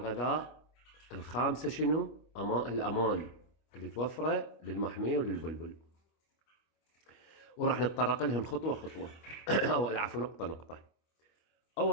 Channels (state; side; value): late; right; 25 ms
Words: الخامسة شنو؟ الأمان اللي توفره للمحمية وللبلبل. وراح نتطرق لهم خطوة خطوة أو العفو نقطة نقطة.